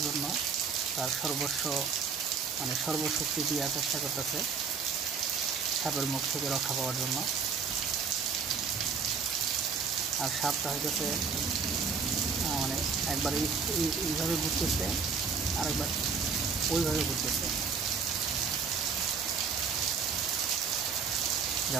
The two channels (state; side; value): quieter; left; 5.7 dB